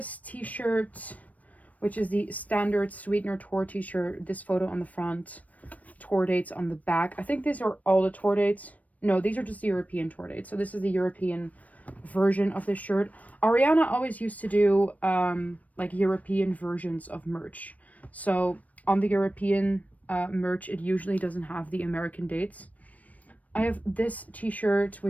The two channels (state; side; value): late; right; 0.071 ms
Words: t-shirt, which is the standard Sweetener tour t-shirt. This photo on the front, tour dates on the back. I think these are all the tour dates. No, these are just the European tour dates. So this is the European version of this shirt. Ariana always used to do like European versions of merch. So on the European merch, it usually doesn't have the American dates. I have this t-shirt,